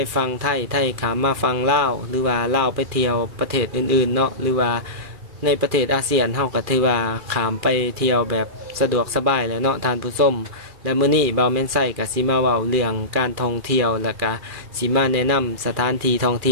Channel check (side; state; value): left; late; 2.4 ms